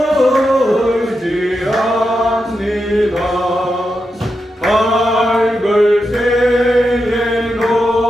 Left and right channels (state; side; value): normal; both; correlation 0.87